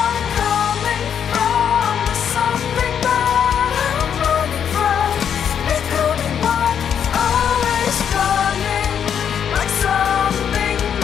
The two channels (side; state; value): right; quieter; 8.3 dB